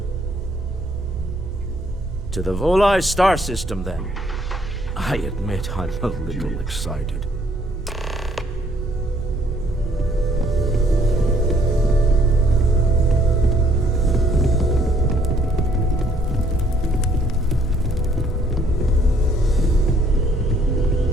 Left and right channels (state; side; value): normal; both; correlation 0.65